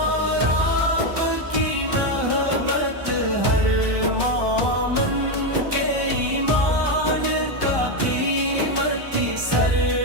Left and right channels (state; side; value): late; left; 1.2 ms